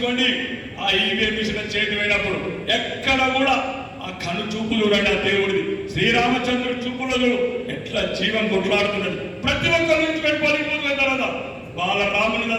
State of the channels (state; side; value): identical; both; correlation 1.00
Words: ఆ ఈవీఎం మిషన్ చేతి పోయినప్పుడు ఎక్కడ కూడా ఆ కను చూపులు చూడండి, ఆ దేవుడిది శ్రీరామచంద్రుడి చూపులు ఎట్లా జీవం కొట్లాడుతున్నది. ప్రతి ఒక్కరు ఊహించుకొని పోలింగ్ బూత్ అయిన తర్వాత బాలరాముని